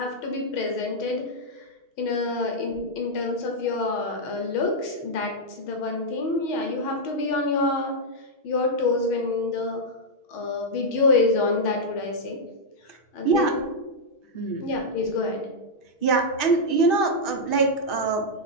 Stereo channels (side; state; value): right; late; 6.4 ms